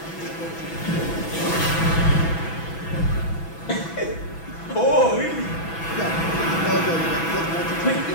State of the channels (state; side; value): late; right; 6.1 ms